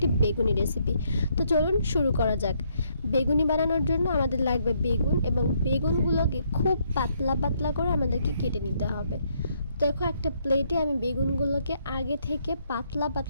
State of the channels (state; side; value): inverted; both; correlation -0.72